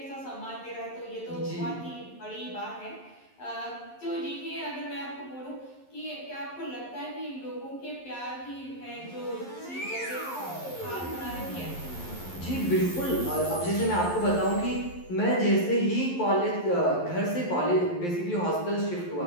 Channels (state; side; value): late; right; 11 ms